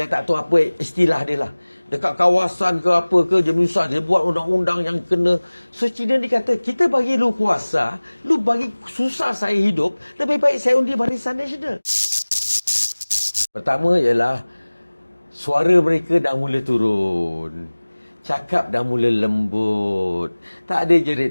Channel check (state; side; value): inverted; both; correlation -1.00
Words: tak tahu apa istilah dia lah. Dekat kawasan ke apa ke, dia menyusah. Dia buat undang-undang yang kena. So, Cina ni kata, kita bagi lu kuasa, lu bagi susah saya hidup, lebih baik saya undi Barisan Nasional. Pertama ialah, suara mereka dah mula turun. Cakap dah mula lembut. Tak ada